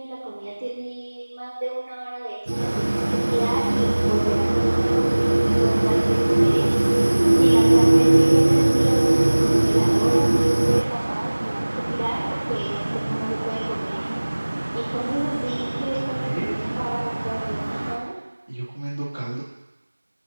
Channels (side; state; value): both; inverted; correlation -1.00